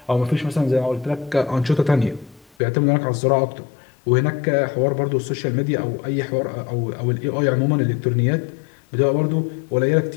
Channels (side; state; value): right; drops out; at 2.6 s